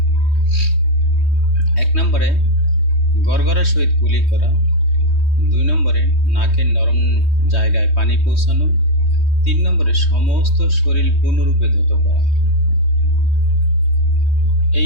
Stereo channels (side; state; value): right; late; 3.2 ms